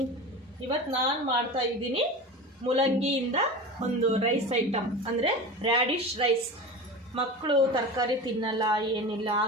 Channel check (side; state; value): both; normal; correlation 0.30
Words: ಇವತ್ತು ನಾನು ಮಾಡ್ತಾ ಇದ್ದೀನಿ ಮೂಲಂಗಿಯಿಂದ ಒಂದು ರೈಸ್ ಐಟಮ್, ಅಂದರೆ ರ್ಯಾಡಿಶ್ ರೈಸ್. ಮಕ್ಕಳು ತರಕಾರಿ ತಿನ್ನಲ್ಲ, ಏನಿಲ್ಲ,